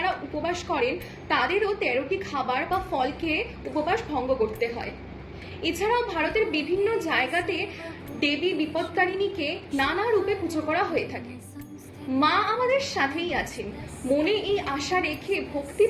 উপবাস করেন তাদেরও 13টি খাবার বা ফল খেয়ে উপবাস ভঙ্গ করতে হয়। এছাড়াও ভারতের বিভিন্ন জায়গাতে দেবী বিপত্তারিণীকে নানা রূপে পুজো করা হয়ে থাকে। মা আমাদের সাথেই আছেন। মনে এই আশা রেখে ভক্তি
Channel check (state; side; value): identical; both; correlation 1.00